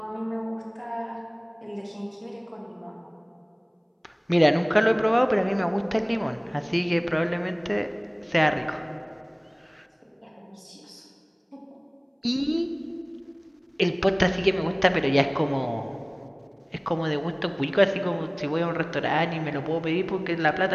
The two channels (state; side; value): identical; both; correlation 1.00